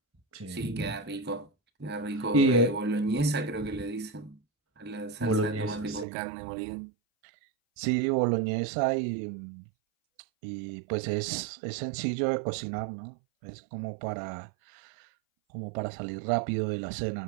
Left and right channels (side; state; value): left; drops out; at 6.1 s